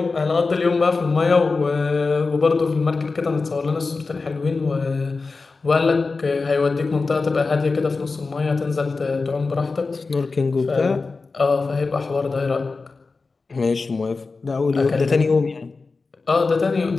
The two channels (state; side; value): quieter; right; 4.0 dB